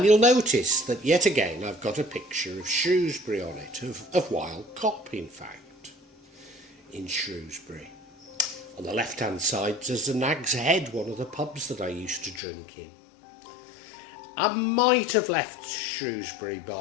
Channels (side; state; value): right; drops out; at 12.4 s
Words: you'll notice that yet again I've got a picture of Shrewsbury on it, of Wild Cop in fact, in Shrewsbury. On the left hand side there's the Nag's Head, one of the pubs that I used to drink in. I might have left Shrewsbury